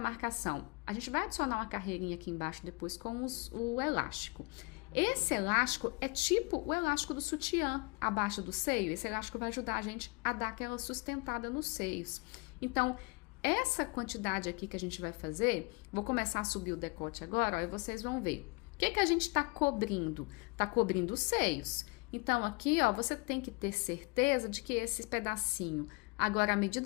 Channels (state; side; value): quieter; right; 28.6 dB